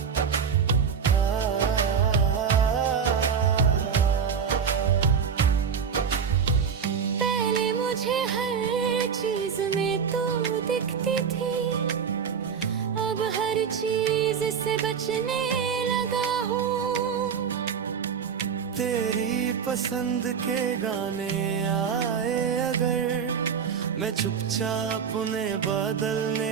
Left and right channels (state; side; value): quieter; left; 6.8 dB